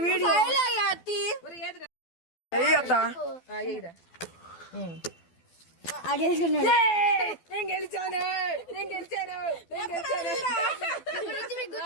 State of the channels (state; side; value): late; right; 12 ms